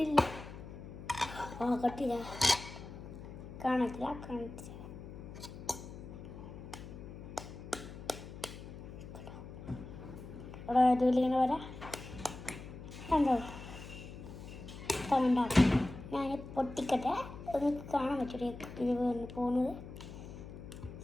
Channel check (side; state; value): left; noise; hum, 12 dB below the sound